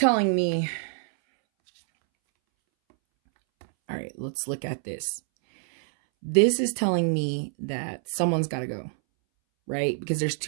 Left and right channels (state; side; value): silent; left; 61 dB below the other